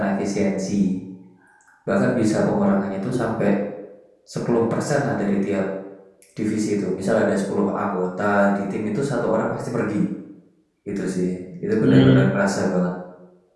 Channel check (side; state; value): both; identical; correlation 1.00